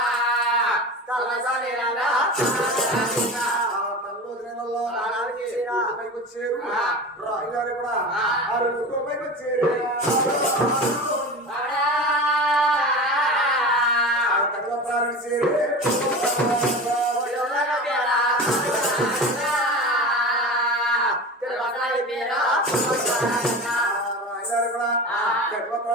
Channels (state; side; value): normal; both; correlation 0.30